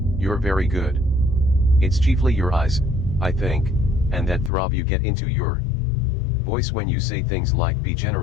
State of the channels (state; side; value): drops out; right; at 4.5 s